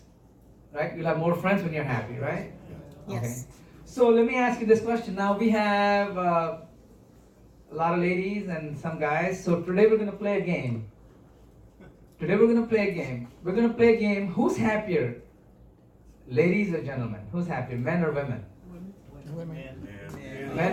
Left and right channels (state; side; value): identical; both; correlation 1.00